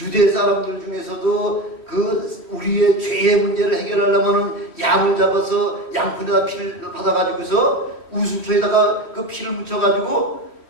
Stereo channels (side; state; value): right; late; 3.1 ms